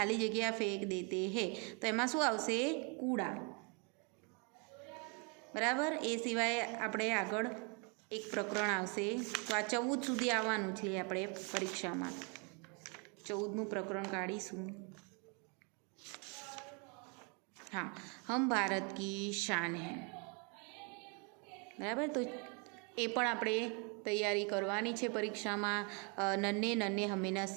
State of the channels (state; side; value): quieter; left; 34.9 dB